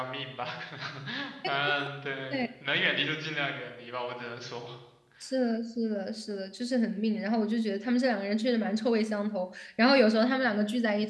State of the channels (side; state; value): both; identical; correlation 1.00